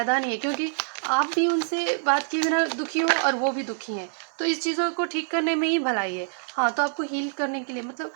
नहीं है, क्योंकि आप भी उनसे बात किए बिना दुखी हो और वो भी दुखी हैं। तो इस चीज़ों को ठीक करने में ही भलाई है। हाँ, तो आपको हील करने के लिए मतलब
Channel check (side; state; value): left; silent; digital silence